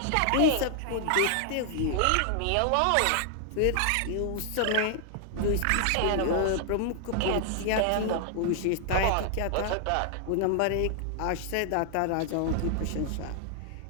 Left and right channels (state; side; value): different; both; correlation 0.00